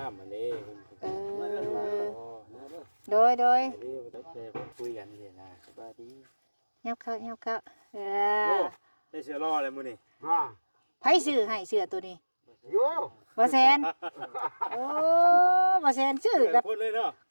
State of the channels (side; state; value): both; inverted; correlation -1.00